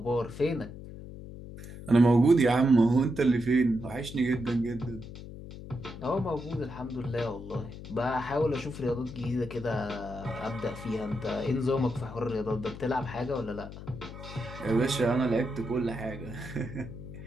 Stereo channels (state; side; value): noise; left; hum, 12 dB below the sound